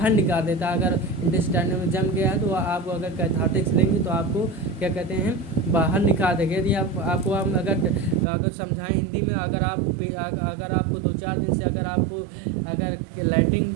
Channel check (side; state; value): left; drops out; at 8.2 s